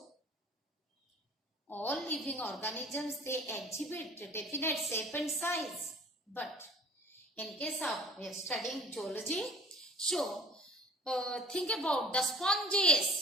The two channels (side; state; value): both; normal; correlation 0.47